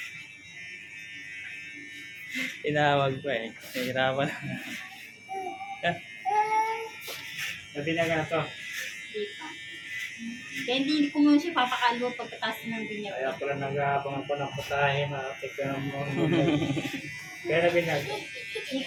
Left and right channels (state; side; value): identical; both; correlation 1.00